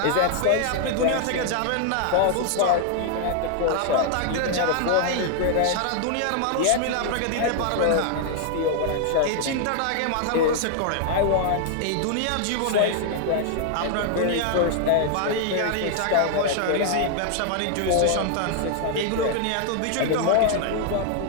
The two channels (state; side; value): different; both; correlation 0.00